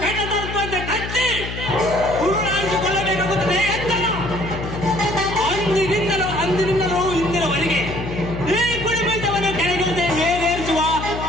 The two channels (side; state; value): left; noise; hum, 7 dB below the sound